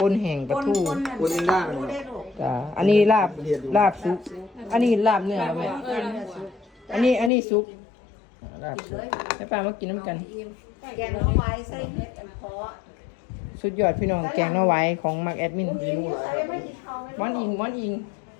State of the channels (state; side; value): drops out; right; at 7.3 s